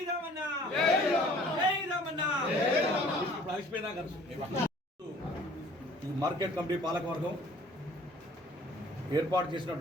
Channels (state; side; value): normal; both; correlation 0.53